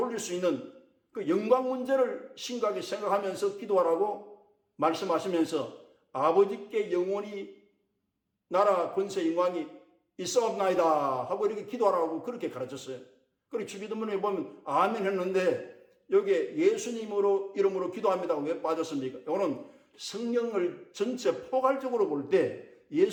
수 있는 그 영광 문제를 심각하게 생각하면서 기도하라고 말씀하시면서 아버지께 영원히 나라 권세 영광이 있사옵나이다 하고 이렇게 기도하라고 그렇게 가르쳤어요. 그리고 주기도문에 보면 아멘 했는데 여기에 예수님으로 이름으로 기도합니다. 왜 빠졌습니까? 이거는 성경을 전체 포괄적으로 볼 때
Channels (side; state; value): both; identical; correlation 1.00